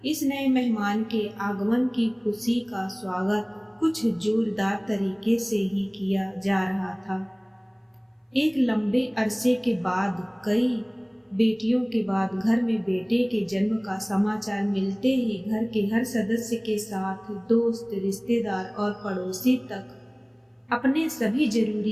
इस नए मेहमान के आगमन की खुशी का स्वागत कुछ जोरदार तरीके से ही किया जा रहा था। एक लंबे अरसे के बाद, कई बेटियों के बाद घर में बेटे के जन्म का समाचार मिलते ही घर के हर सदस्य के साथ दोस्त, रिश्तेदार और पड़ोसी तक अपने सभी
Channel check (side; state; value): both; identical; correlation 1.00